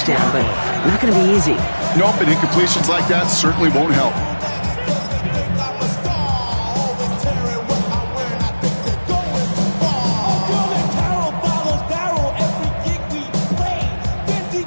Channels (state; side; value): inverted; both; correlation -1.00